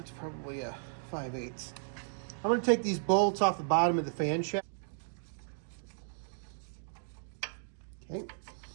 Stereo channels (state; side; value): silent; left; digital silence